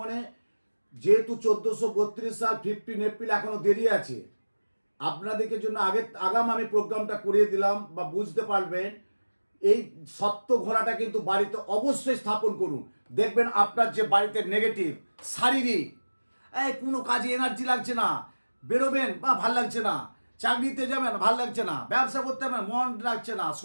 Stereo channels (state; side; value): inverted; both; correlation -1.00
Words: যেহেতু 1432 সাল 15 এপ্রিল এখনো দেরি আছে, আপনাদেরকে জন্য আগাম আমি প্রোগ্রামটা করিয়ে দিলাম, বা বুঝতে পারবেন। এই সত্য ঘোড়াটা কিন্তু বাড়িতে অবশ্যই স্থাপন করুন। দেখবেন আপনার যে বাড়িতে নেগেটিভ, শারীরিক, কোনো কাজে এনার্জি লাগছে না, বেরোবেন বা ভাল লাগছে না, চাকরিতে যাবেন ভাল লাগছে না, ব্যবসা করতে হবে মন লাগছে না,